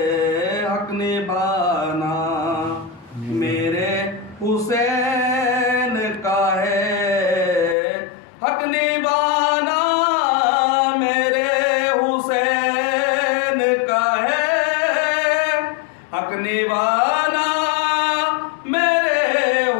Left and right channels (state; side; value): drops out; right; at 7.8 s